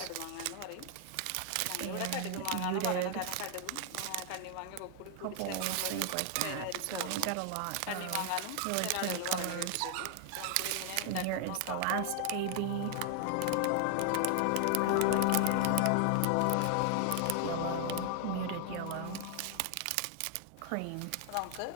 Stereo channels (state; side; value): different; both; correlation 0.00